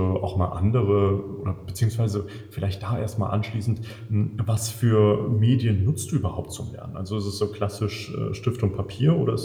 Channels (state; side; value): identical; both; correlation 1.00